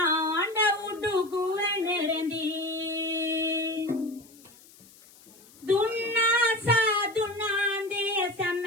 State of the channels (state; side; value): noise; left; hiss, 24 dB below the sound